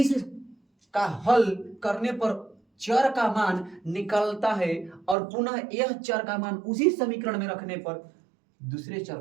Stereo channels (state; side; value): drops out; left; at 5.2 s